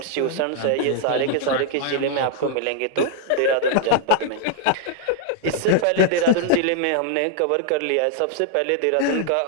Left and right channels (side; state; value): both; different; correlation -0.01